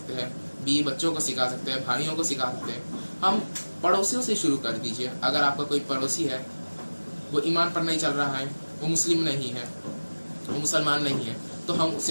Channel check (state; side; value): inverted; both; correlation -1.00